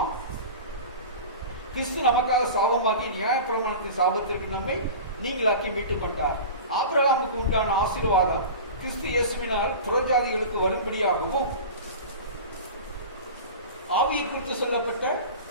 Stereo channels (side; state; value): both; inverted; correlation -0.33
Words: கிறிஸ்து நமக்காக சாபமாகி நியாயப்பிரமாணத்தின் சாபத்திற்கு நம்மை நீங்களாக்கி மீட்டுக் கொண்டார். ஆபிரகாமுக்கு உண்டான ஆசீர்வாதம் கிறிஸ்து இயேசுவினால் புறஜாதிகளுக்கு வரும்படியாகவும் ஆவியை குறித்து சொல்லப்பட்ட